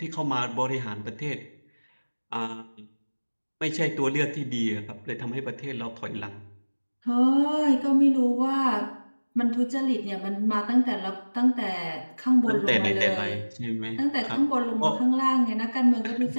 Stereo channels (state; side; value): inverted; both; correlation -1.00